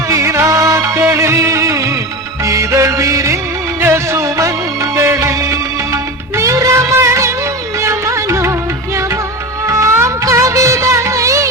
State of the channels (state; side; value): normal; both; correlation 0.25